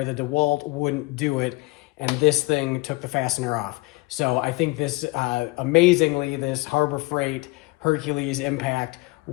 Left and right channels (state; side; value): quieter; right; 24.1 dB